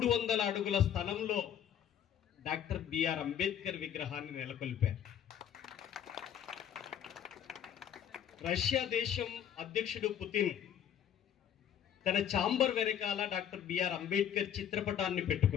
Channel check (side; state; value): right; quieter; 9.5 dB